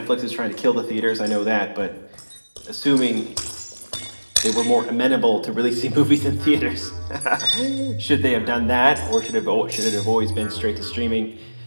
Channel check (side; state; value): both; inverted; correlation -1.00